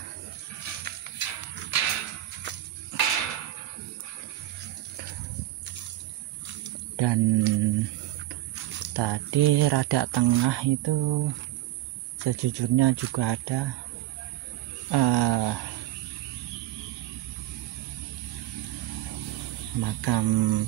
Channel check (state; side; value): quieter; left; 14.8 dB